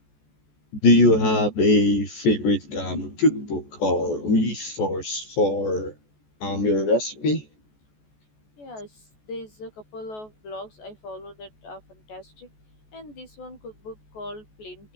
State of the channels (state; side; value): late; right; 14 ms